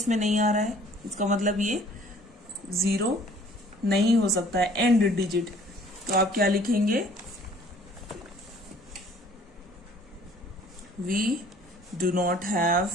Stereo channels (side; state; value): both; normal; correlation 0.55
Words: नहीं आ रहा है, इसका मतलब ये 0 नहीं हो सकता है एंड डिजिट। तो आप क्या लिखेंगे, we do not have